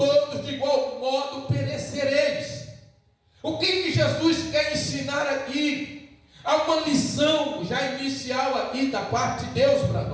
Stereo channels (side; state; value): both; identical; correlation 1.00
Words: de igual modo perecereis. O que Jesus quer ensinar aqui? Há uma lição já inicial aqui da parte de Deus para